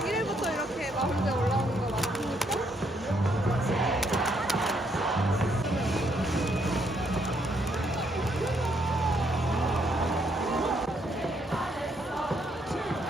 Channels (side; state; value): both; normal; correlation 0.72